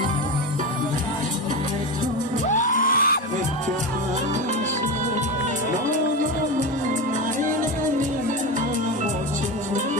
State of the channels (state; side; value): normal; both; correlation 0.20